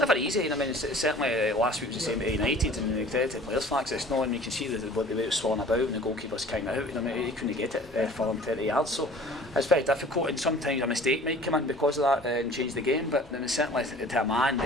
easy. I mean, it's certainly last week was the same at United, and the credit to the players' facts, it's not, and you can see the way it was swollen about, and the goalkeeper's kind of out. I mean, he couldn't get it for him 30 yards, so it's very difficult. And sometimes a mistake might come in because of that and change the game. But then certainly to a man,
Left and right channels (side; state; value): both; normal; correlation 0.47